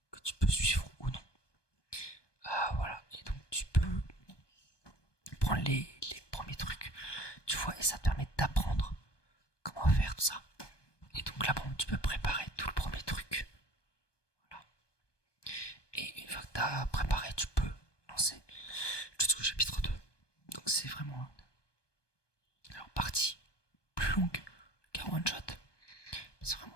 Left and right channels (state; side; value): late; right; 1.2 ms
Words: que tu peux suivre ou non. Voilà, et donc tu peux prendre les premiers trucs, tu vois, et ça te permet d'apprendre comment faire tout ça. Et donc là, bon, tu peux préparer tout le premier truc. Voilà. Et une fois que t'as préparé, tu peux lancer jusqu'au chapitre 2. Donc c'est vraiment alors partie plus longue qu'un one shot. C'est